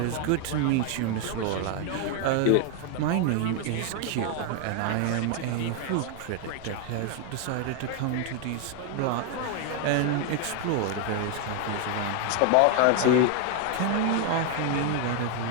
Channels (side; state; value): both; different; correlation 0.01